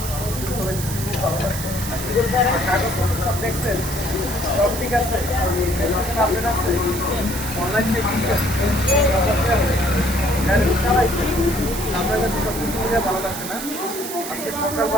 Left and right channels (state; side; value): noise; right; hiss, 8 dB below the sound